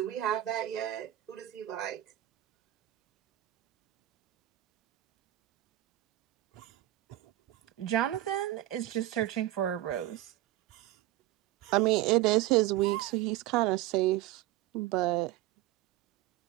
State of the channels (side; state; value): left; quieter; 15.0 dB